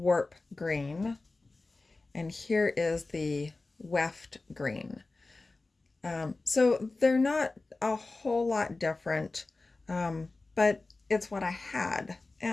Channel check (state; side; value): quieter; right; 3.4 dB